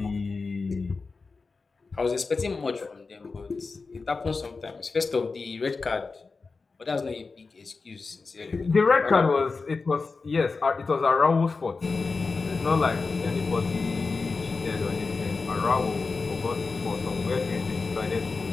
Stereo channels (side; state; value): right; quieter; 4.2 dB